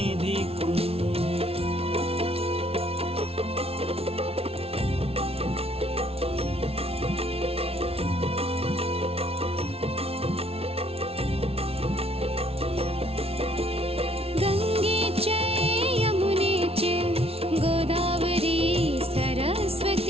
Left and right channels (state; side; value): late; left; 0.29 ms